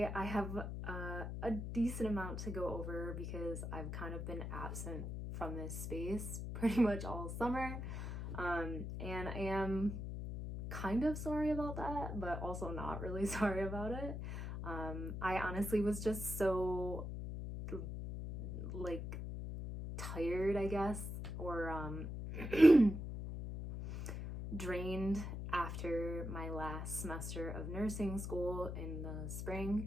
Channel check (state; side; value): noise; left; hum, 5 dB below the sound